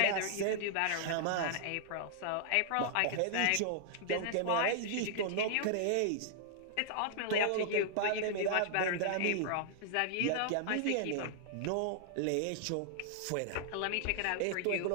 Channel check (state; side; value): different; both; correlation -0.01